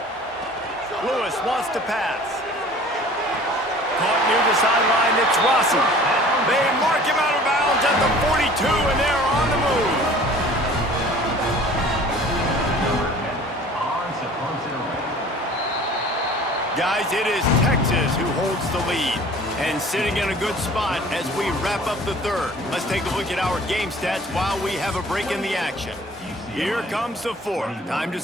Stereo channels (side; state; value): both; normal; correlation 0.47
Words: Lewis wants to pass. Caught near the sideline, it's Rossi. They mark him out of bounds at the 42, and they're on the move. Guys, it is Texas who holds the lead and sitting in a good spot as we wrap up the third. Let's take a look at our game stats while we have a break in the action. Here comes the fourth. Time to